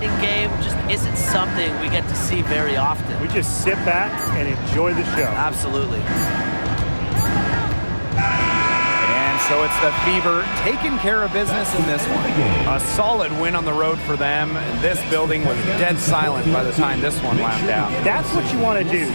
game just isn't something we get to see very often. We just sit back and enjoy the show. Absolutely. And so it's the Fever taking care of business in this one. A solid win on the road for them. This building was dead silent by the time this one wound down. That's what you want to do.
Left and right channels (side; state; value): both; inverted; correlation -1.00